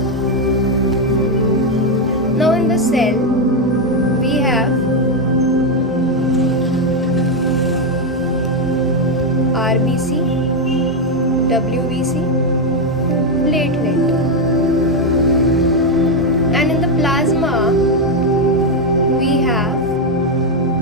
Now in the cell, we have RBC, WBC, platelet. And in the plasma, we have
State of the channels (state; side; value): normal; both; correlation 0.04